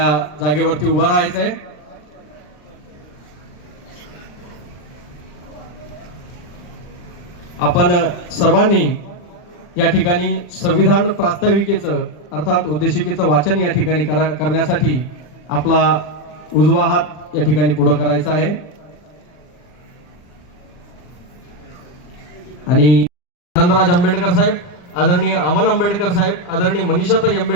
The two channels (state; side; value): late; right; 40 ms